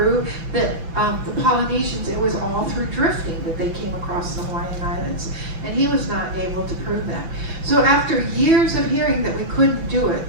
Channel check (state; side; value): late; left; 6.0 ms